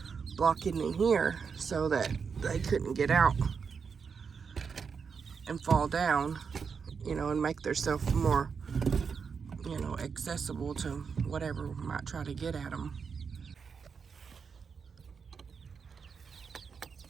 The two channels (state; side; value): quieter; left; 5.9 dB